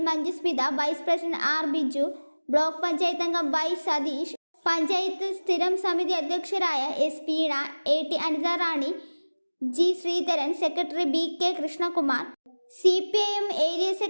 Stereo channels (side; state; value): both; inverted; correlation -1.00